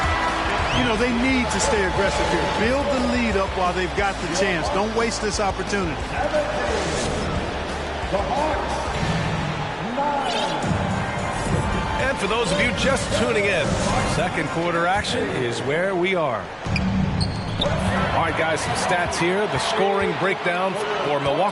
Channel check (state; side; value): identical; both; correlation 1.00